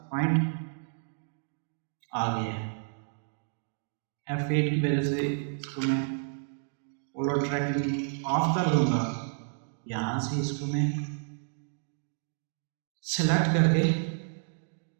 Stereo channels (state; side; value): silent; left; digital silence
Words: पॉइंट आ गया है। F8 की वजह से इसको मैं पोलर ट्रैकिंग ऑफ कर दूँगा। यहाँ से इसको मैं सेलेक्ट करके